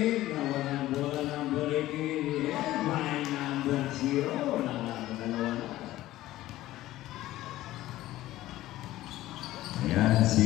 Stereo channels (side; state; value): right; quieter; 15.6 dB